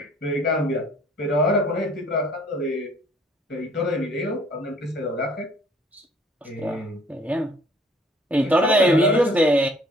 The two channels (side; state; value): both; normal; correlation 0.57